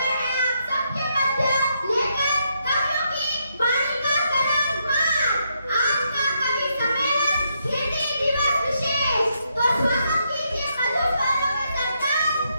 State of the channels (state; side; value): inverted; both; correlation -0.78